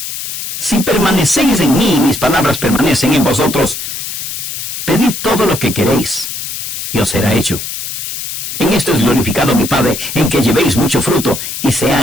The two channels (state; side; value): noise; left; hiss, 6 dB below the sound